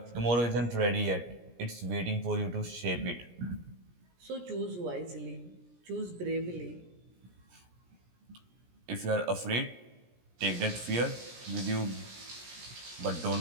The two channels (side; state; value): left; late; 17 ms